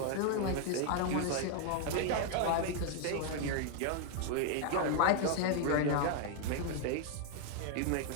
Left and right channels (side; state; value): both; different; correlation 0.00